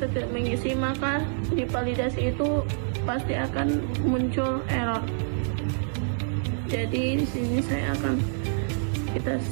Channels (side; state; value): left; silent; 60 dB below the other